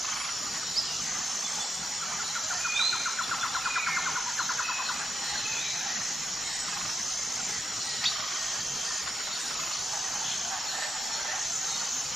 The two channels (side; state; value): both; normal; correlation 0.88